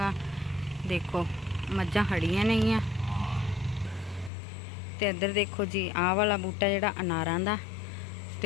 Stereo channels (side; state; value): right; drops out; at 4.3 s